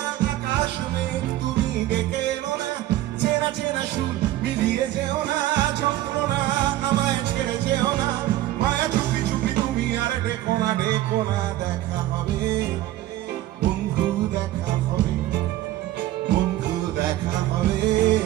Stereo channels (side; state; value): left; quieter; 14.7 dB